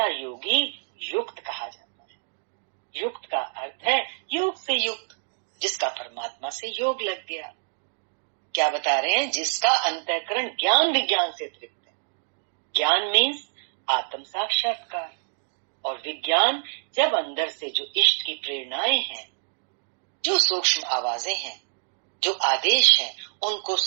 योगी युक्त कहा जाता है। युक्त का अर्थ है योग से युक्त, जिसका परमात्मा से योग लग गया। क्या बता रहे हैं? जिसका अंतःकरण ज्ञान विज्ञान से तृप्त है। ज्ञान मीन्स आत्म साक्षात्कार, और विज्ञान जब अंदर से जो इष्ट की प्रेरणाएं हैं, जो सूक्ष्म आवाजें हैं, जो आदेश हैं, उनको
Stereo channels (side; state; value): left; silent; digital silence